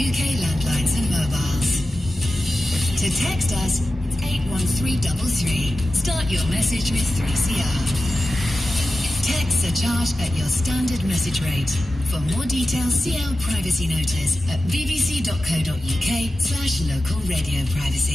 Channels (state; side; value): normal; both; correlation 0.94